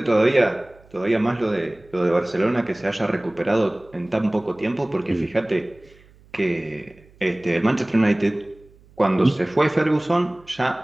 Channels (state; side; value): noise; right; hum, 28 dB below the sound